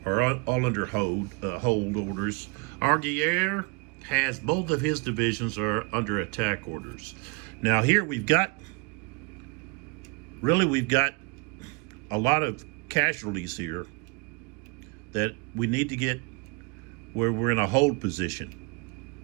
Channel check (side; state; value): left; quieter; 29.4 dB